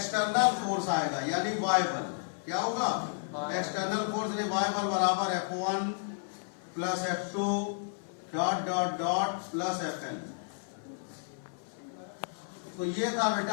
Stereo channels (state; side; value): silent; right; 56 dB below the other